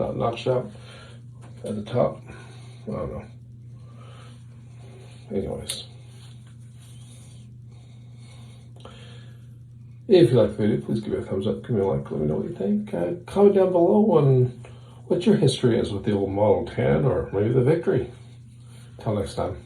notched out at the top. I don't know. Anyways. If you like the video, please give it a thumbs up, give me a like, let me know what you think. Comment down below on what your history is with the old Model 10 or maybe the Victory. Until next time,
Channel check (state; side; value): identical; both; correlation 1.00